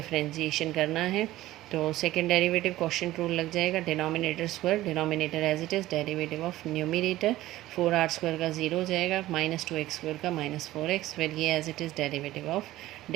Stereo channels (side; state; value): left; quieter; 15.8 dB